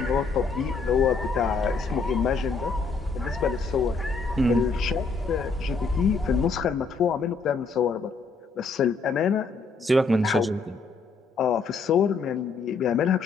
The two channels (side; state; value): right; quieter; 4.3 dB